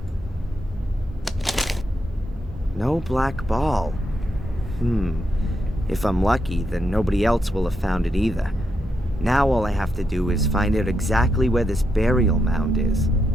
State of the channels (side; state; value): both; normal; correlation 0.82